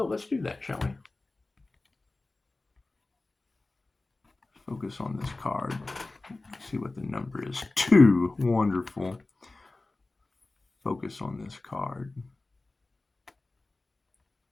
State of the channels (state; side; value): quieter; right; 3.2 dB